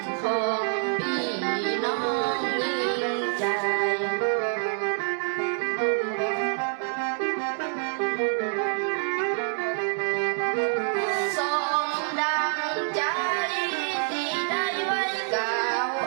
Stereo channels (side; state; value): left; silent; 59 dB below the other